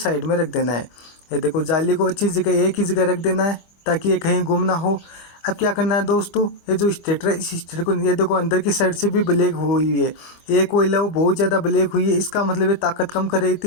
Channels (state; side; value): late; right; 25 ms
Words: में रख देना है। ये देखो जाली को अच्छी जगह एक ही जगह रख देना है ताकि ये कहीं गुम ना हो। अब क्या करना है दोस्तों, ये जो स्टेटर है इस स्टेटर को ये देखो अंदर की साइड से भी ब्लैक हुई है, एक कोयला वो बहुत ज़्यादा ब्लैक हुई है, इसका मतलब ये ताकत कम कर रही